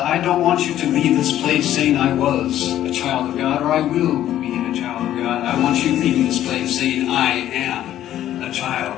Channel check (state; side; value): quieter; right; 12.2 dB